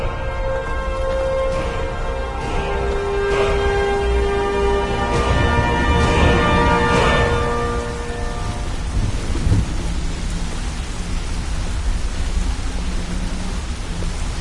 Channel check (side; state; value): both; identical; correlation 1.00